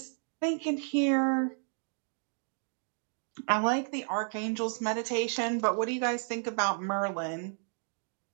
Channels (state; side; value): silent; left; 56 dB below the other